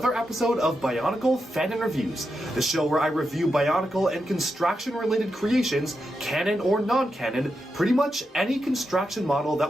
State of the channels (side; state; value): both; normal; correlation 0.87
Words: episode of Bionicle Fanon Reviews, the show where I review Bionicle and construction-related creations, canon or non-canon, pretty much any construction model